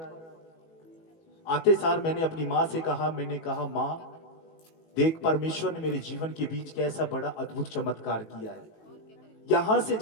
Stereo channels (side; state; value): right; late; 19 ms